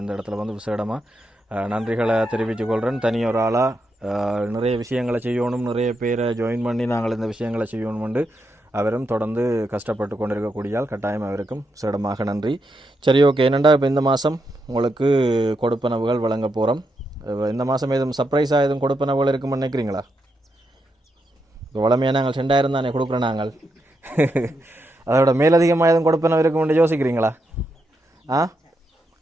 இந்த இடத்துல வந்து விசேடமாக நன்றிகளை தெரிவித்துக் கொள்கிறேன். தனியொரு ஆளாக நிறைய விஷயங்களை செய்யணும், நிறைய பேரை ஜாயின் பண்ணி நாங்கள் இந்த விஷயங்களை செய்யணும்னு அவரும் தொடர்ந்து கஷ்டப்பட்டு கொண்டிருக்கக்கூடியால் கட்டாயம் அவருக்கும் சிறடமாக நன்றி. சரி, ஓகே. என்னென்னா இப்போ இந்த மாதம் உங்களுக்கு கொடுப்பனவுகள் வழங்க போகிறோம். இந்த மாதம் எதுவும் சர்ப்ரைஸாக எதுவும் கொடுப்பனவுகள் இருக்குன்னு நினைக்கிறீங்களா? இப்போ வளமையாக நாங்கள் 2000 தானே கொடுக்குறோம் நாங்கள். அதோட மேலதிகமாக எதுவும் கொடுப்பனவு இருக்குன்னு யோசிக்கிறீங்களா?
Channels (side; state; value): both; normal; correlation 0.83